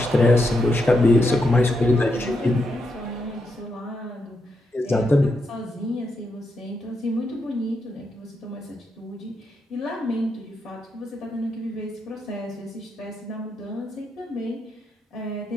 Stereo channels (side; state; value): both; normal; correlation 0.82